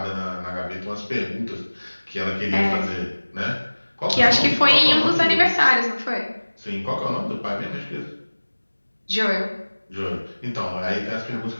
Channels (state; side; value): inverted; both; correlation -1.00